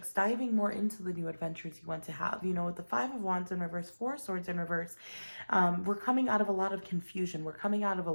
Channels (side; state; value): both; inverted; correlation -1.00